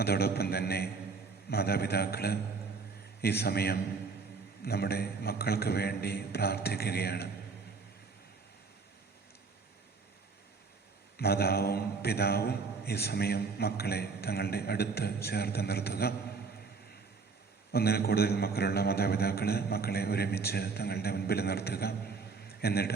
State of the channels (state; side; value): quieter; left; 4.7 dB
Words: തന്നെ മാതാപിതാക്കൾ ഈ സമയം നമ്മുടെ മക്കൾക്ക് വേണ്ടി പ്രാർത്ഥിക്കുകയാണ്. മാതാവും പിതാവും ഈ സമയം മക്കളെ തങ്ങളുടെ അടുത്ത് ചേർത്ത് നിർത്തുക. ഒന്നിൽ കൂടുതൽ മക്കളുള്ള മാതാപിതാക്കൾ മക്കളെ ഒരുമിച്ച് തങ്ങളുടെ മുൻപിൽ നിർത്തുക.